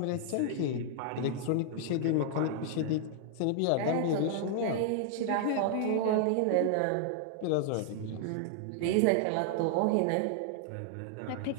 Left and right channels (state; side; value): different; both; correlation -0.01